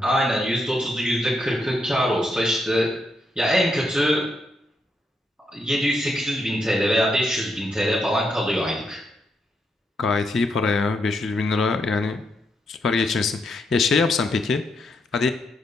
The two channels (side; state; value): both; normal; correlation 0.80